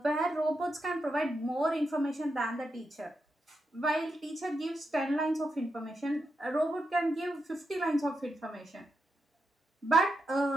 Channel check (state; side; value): normal; both; correlation 0.85